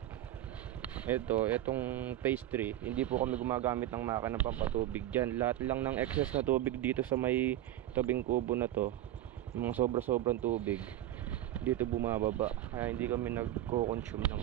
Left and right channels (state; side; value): quieter; left; 13.4 dB